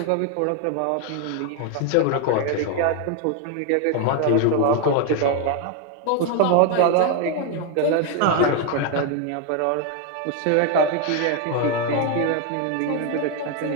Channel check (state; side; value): different; both; correlation 0.01